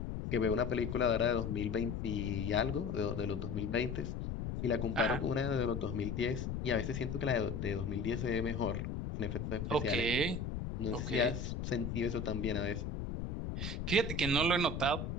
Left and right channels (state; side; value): noise; left; rumble, 4 dB below the sound